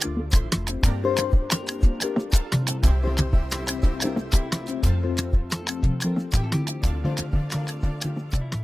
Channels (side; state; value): both; normal; correlation 0.97